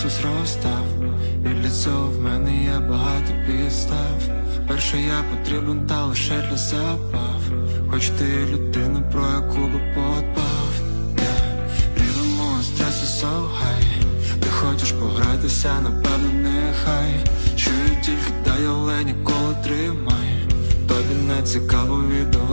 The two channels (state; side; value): inverted; both; correlation -1.00